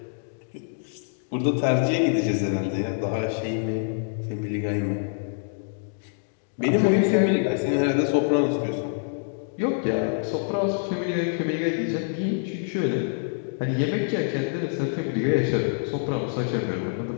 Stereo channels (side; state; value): right; silent; digital silence